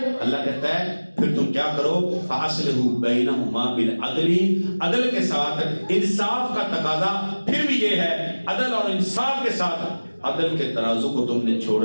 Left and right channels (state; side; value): inverted; both; correlation -1.00